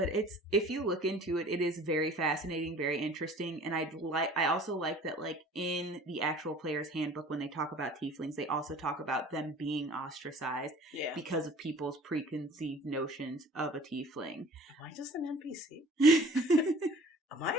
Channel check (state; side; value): normal; both; correlation 0.48